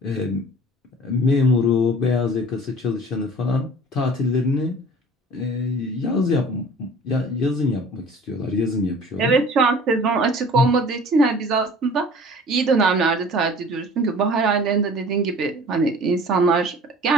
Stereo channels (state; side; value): normal; both; correlation 0.46